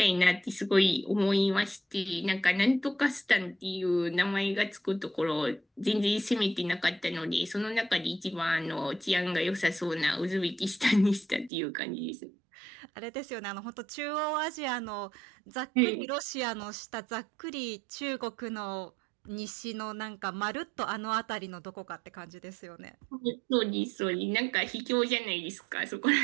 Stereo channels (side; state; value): left; drops out; at 11.5 s